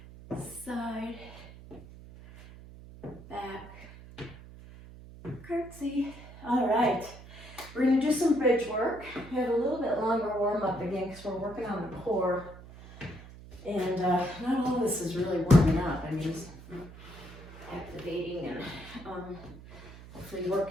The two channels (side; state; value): right; noise; hum, 17 dB below the sound